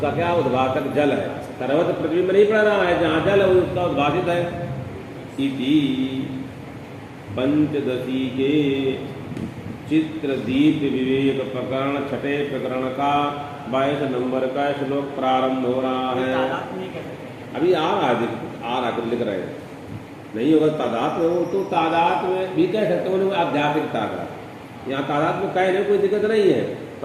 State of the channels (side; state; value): both; identical; correlation 1.00